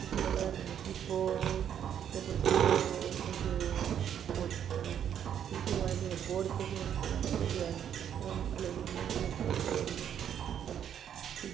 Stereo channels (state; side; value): quieter; left; 9.2 dB